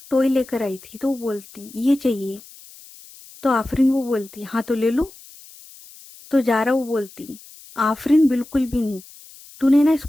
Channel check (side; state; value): left; noise; hiss, 21 dB below the sound